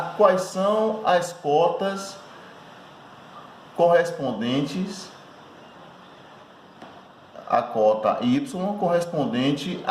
quais são as cotas correspondentes, a cota Y correspondente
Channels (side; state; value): both; identical; correlation 1.00